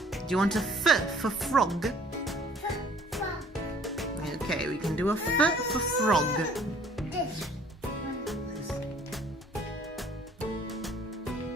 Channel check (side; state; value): both; normal; correlation 0.56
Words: Do you want a F for frog? From Okay, we can do a F for frog. this.